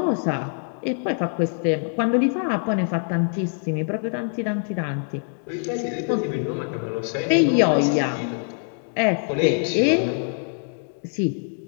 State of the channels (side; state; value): right; silent; 63 dB below the other